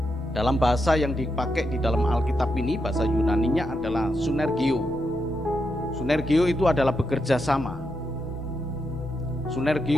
Dalam bahasa yang dipakai di dalam Alkitab ini, bahasa Yunaninya adalah sunergio. Sunergio itu adalah bekerja sama.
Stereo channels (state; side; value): normal; both; correlation 0.83